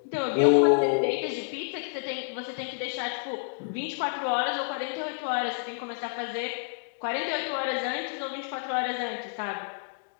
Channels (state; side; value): silent; right; digital silence